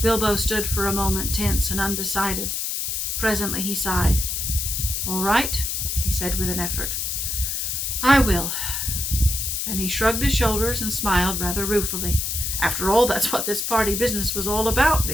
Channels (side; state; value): left; noise; hiss, 1 dB below the sound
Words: stood for a moment tense and undecided. Presently he sighed. "All right," he said with an effort. "I will." Then he shrugged his shoulders and smiled rather ruefully. After all, that's what this party business was all about,